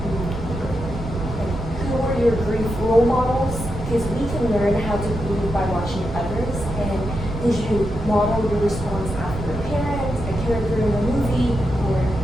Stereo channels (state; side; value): noise; right; rumble, 7 dB below the sound